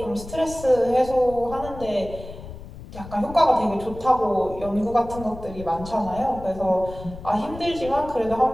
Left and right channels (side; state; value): left; noise; rumble, 14 dB below the sound